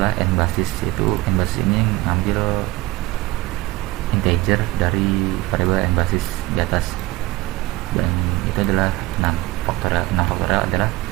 nbasis, itu nbasis ini mengambil integer dari variabel nbasis di atas, dan itu adalah 6 faktorial. 6 faktorial adalah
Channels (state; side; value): quieter; left; 19.5 dB